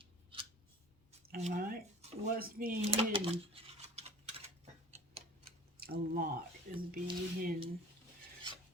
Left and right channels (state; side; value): normal; both; correlation 0.43